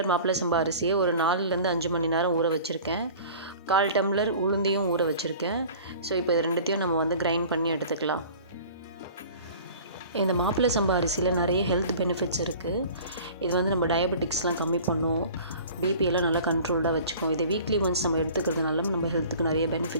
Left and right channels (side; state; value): both; inverted; correlation -0.43